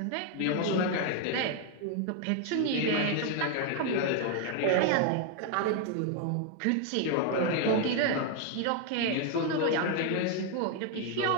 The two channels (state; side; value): different; both; correlation 0.01